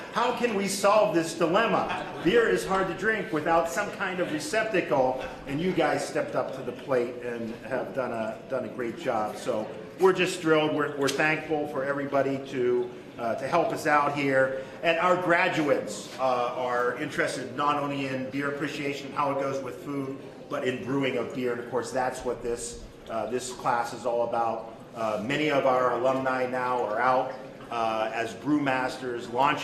how can we solve this dilemma? Beer is hard to drink without some kind of receptacle, and you guys stepped up to the plate and have done a great job. So we're just thrilled. We're thankful for everybody to help us out here. And our graduates are interested not only in beer appreciation and how it goes with food, but in brewing of beer. And of course, that's what this class is all about. Many of our alumni now are out as brewmasters,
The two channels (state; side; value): identical; both; correlation 1.00